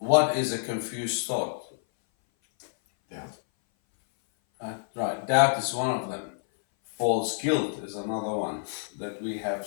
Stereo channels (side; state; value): right; silent; 57 dB below the other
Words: is a confused thought? Doubt. Right, doubt is one of them. False guilt is another one that we have